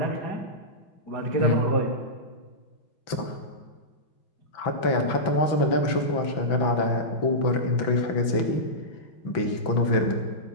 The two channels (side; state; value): right; late; 5.9 ms